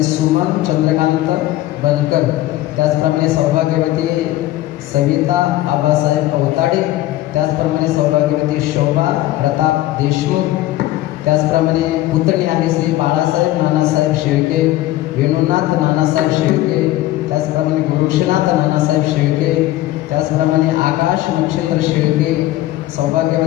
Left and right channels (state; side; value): quieter; right; 15.5 dB